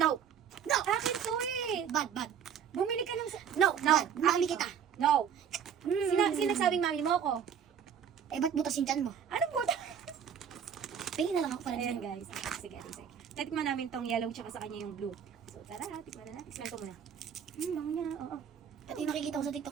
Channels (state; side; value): quieter; left; 8.0 dB